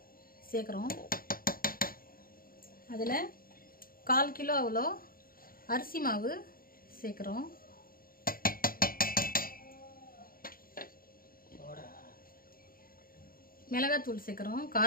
சேர்க்குறோம். அதில் 1/4 கிலோ அவ்வளோ அரிசி மாவு சேர்க்குறோம். மிளகாத்தூள் சேர்க்குறோம்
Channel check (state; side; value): late; right; 0.42 ms